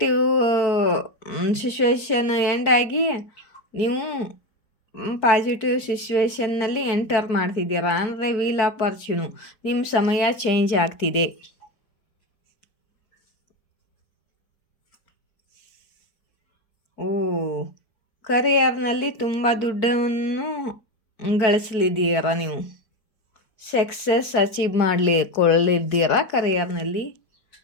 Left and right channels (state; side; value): late; right; 4.5 ms